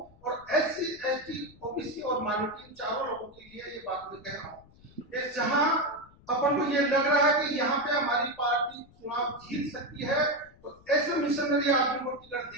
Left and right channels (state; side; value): noise; left; rumble, 26 dB below the sound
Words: और SC, ST, OBC और माइनॉरिटी चारों लोगों के लिए ये बात मैं कह रहा हूँ। जहां अपन को ये लग रहा है कि यहाँ पे हमारी पार्टी चुनाव जीत सकती है तो ऐसे मिशनरी आदमी को टिकट